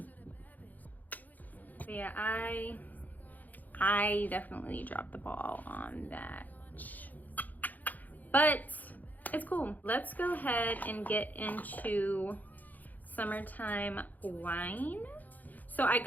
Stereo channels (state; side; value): late; right; 0.082 ms